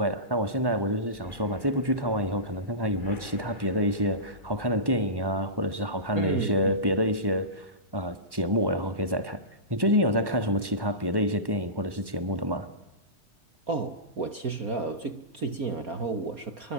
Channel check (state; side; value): late; left; 1.1 ms